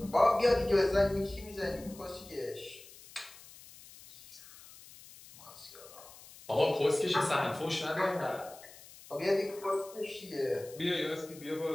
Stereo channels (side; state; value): left; noise; hiss, 20 dB below the sound